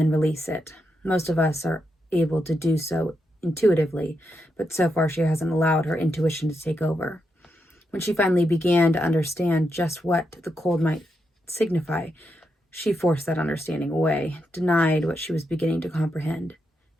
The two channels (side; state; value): both; normal; correlation 0.83